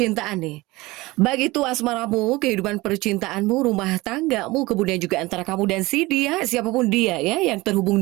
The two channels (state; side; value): quieter; left; 20.9 dB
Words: nih. Baik itu asmaramu, kehidupan percintaanmu, rumah tanggamu, kemudian juga antara kamu dan si dia, siapapun dia ya, yang terhubung